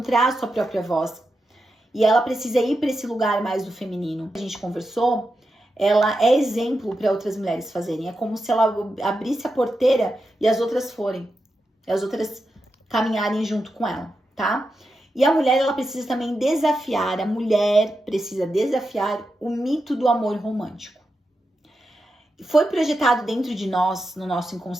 a sua própria voz. E ela precisa ir para esse lugar mais do feminino. A gente conversou, ela é exemplo para outras mulheres fazerem. É como se ela abrisse a porteira e as outras forem. E as outras caminharem junto com ela, tá? E a mulher, ela precisa também desafiar, a mulher precisa desafiar o mito do amor romântico. Foi projetado dentro de nós, no nosso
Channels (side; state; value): both; normal; correlation 0.88